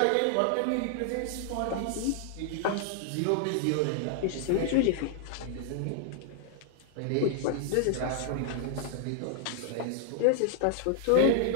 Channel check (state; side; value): different; both; correlation 0.00